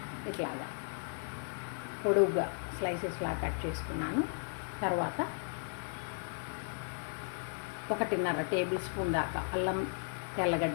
ఇట్లాగా పొడుగ్గా స్లైసెస్లా కట్ చేసుకున్నాను. తర్వాత 1.5 టేబుల్ స్పూన్ దాకా అల్లం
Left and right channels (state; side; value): silent; right; 54 dB below the other